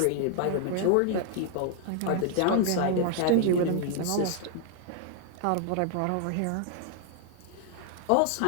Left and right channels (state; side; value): different; both; correlation 0.00